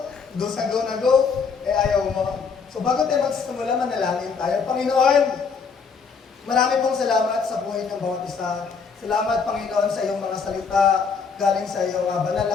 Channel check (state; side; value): quieter; right; 5.5 dB